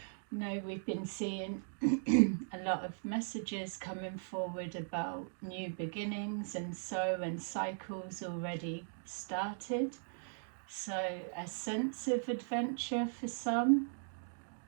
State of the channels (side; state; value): left; silent; digital silence